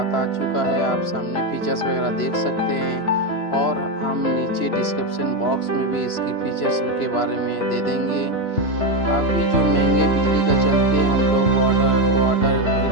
आ चुका है। आप सामने फीचर्स वगैरह देख सकते हैं और हम नीचे डिस्क्रिप्शन बॉक्स में भी इसकी फीचर्स के बारे में दे देंगे। अभी जो महंगे बिजली का चलते हम लोग वाटर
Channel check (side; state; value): right; late; 3.0 ms